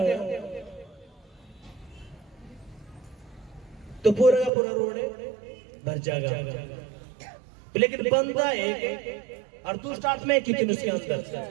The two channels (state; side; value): drops out; left; at 4.5 s